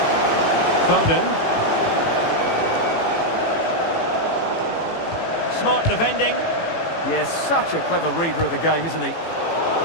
Foden. Smart defending. Yes, such a clever reader of the game, isn't he?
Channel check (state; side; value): late; right; 18 ms